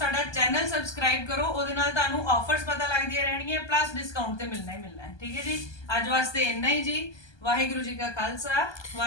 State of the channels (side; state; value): right; late; 1.2 ms